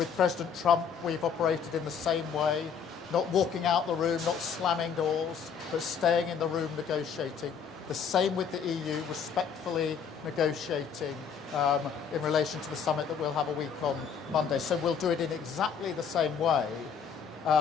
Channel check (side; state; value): right; quieter; 6.8 dB